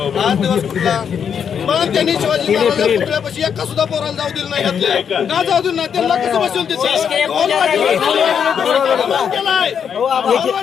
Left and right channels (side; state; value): right; quieter; 7.6 dB